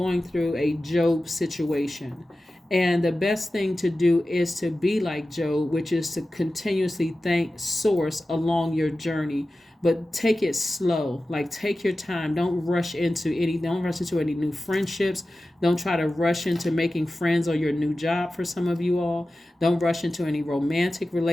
through a Job situation. And the best thing to do is to be like Job, which is to continuously thank source along your journey. But take it slow. Like, take your time. Don't rush into any new friendships. Don't try to rush into making friends or your new job for some of you all. Don't rush into any romantic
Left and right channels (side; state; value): both; normal; correlation 0.95